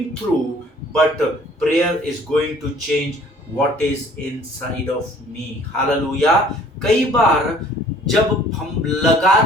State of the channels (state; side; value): normal; both; correlation 0.55